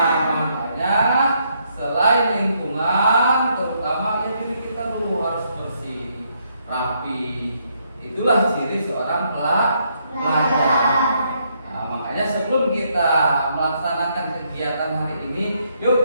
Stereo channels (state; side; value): inverted; both; correlation -0.74